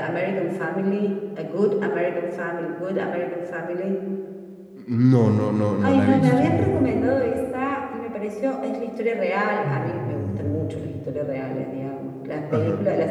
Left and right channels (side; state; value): both; identical; correlation 1.00